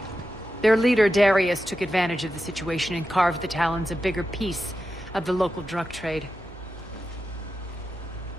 Their leader, Darius, took advantage of the situation and carved the Talons a bigger piece of the local drug trade.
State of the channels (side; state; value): both; normal; correlation 0.90